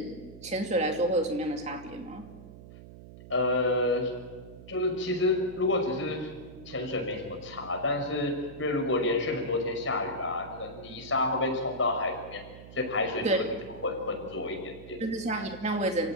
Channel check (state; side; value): noise; right; hum, 16 dB below the sound